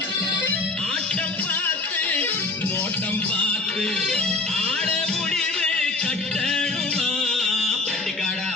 ஆட்டம் பார்த்து நோட்டம் பார்த்து ஆட முடிவு கட்டணுமா பட்டுக்காடா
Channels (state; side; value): quieter; right; 3.3 dB